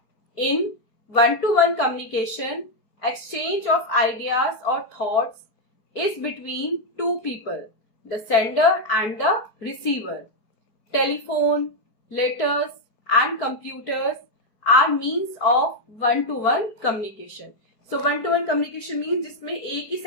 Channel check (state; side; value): late; right; 4.6 ms